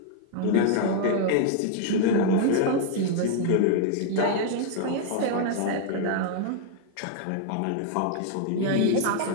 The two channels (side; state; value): both; different; correlation -0.01